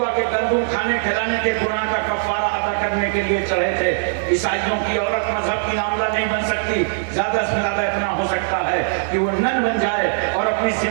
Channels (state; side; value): silent; left; digital silence